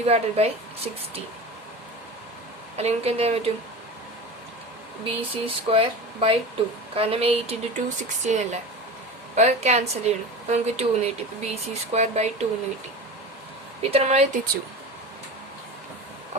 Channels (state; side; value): normal; both; correlation 0.31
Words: 16. അല്ലെങ്കിൽ നമുക്ക് എന്ത് ചെയ്യാൻ പറ്റും? BC²/2. കാരണം 8 × 2 16 അല്ലേ. അപ്പോൾ ക്യാൻസൽ ചെയ്യണം. അപ്പോൾ നമുക്ക് 2 എന്ന് കിട്ടി. ഇപ്പോൾ BC²/2 എന്ന് കിട്ടി. ഇത്ര നമ്മൾ എത്തിച്ചു.